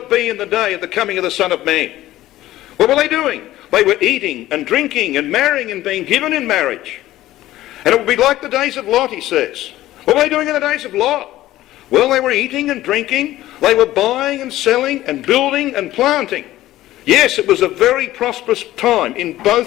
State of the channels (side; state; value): right; quieter; 15.2 dB